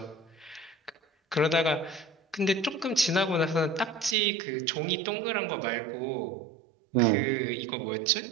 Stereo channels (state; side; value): drops out; left; at 4.2 s